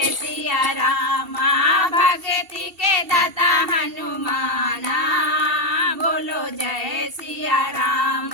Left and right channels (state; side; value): late; left; 2.7 ms